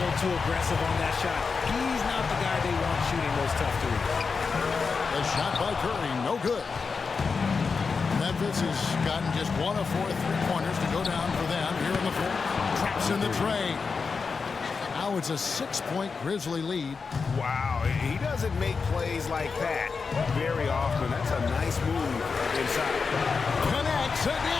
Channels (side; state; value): right; quieter; 5.0 dB